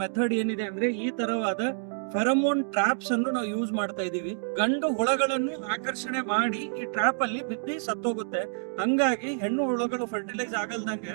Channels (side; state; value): left; silent; digital silence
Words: ಮೆಥಡ್ ಏನಿದೆ ಅಂದ್ರೆ ಈ ತರವಾದ ಫೆರಮೋನ್ ಟ್ರಾಪ್ಸ್ ಅನ್ನು ನಾವು ಯೂಸ್ ಮಾಡ್ತಾ ಇದೀವಿ. ಗಂಡು ಹುಳಗಳನ್ನು ಆಕರ್ಷಣೆ ಮಾಡಿ ಈ ಟ್ರಾಪ್ ಅಲ್ಲಿ ಬಿದ್ದು ಸತ್ತೋಗುತ್ತೆ. ಹಂಗಾಗಿ ಹೆಣ್ಣು ಹುಳಗಳು ಫರ್ಟಿಲೈಸ್ ಆಗಲ್ದಂಗೆ